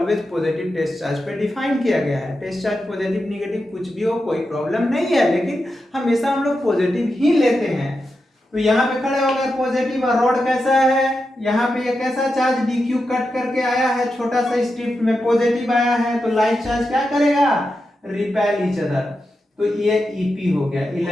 पॉजिटिव टेस्ट चार्ज पे डिफाइन किया गया है। टेस्ट चार्ज पॉजिटिव निगेटिव कुछ भी हो कोई प्रॉब्लम नहीं है, लेकिन हमेशा हम लोग पॉजिटिव ही लेते हैं। तो यहाँ पे खड़े हो गए पॉजिटिव, और रॉड कैसा है, यहाँ पे ये कैसा चार्ज dq कट करके आया है, छोटा सा स्ट्रिप में पॉजिटिव आया है, तो लाइट चार्ज क्या करेगा, रिपेल ईच अदर। तो ये EP हो गया,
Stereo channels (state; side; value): normal; both; correlation 0.88